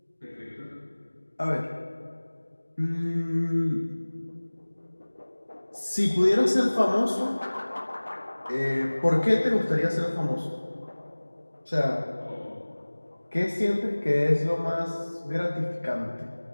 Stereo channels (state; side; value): inverted; both; correlation -1.00